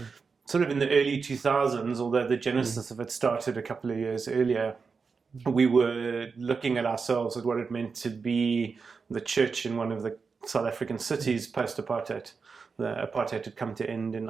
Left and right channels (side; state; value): left; quieter; 5.1 dB